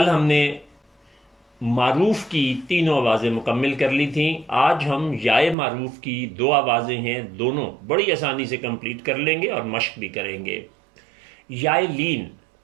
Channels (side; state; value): left; drops out; at 5.6 s